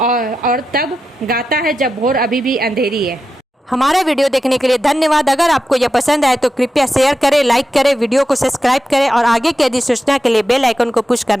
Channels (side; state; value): both; normal; correlation 0.89